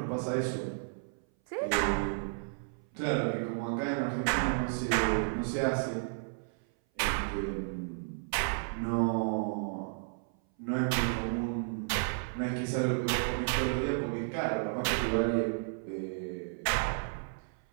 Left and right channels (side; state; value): left; silent; 56 dB below the other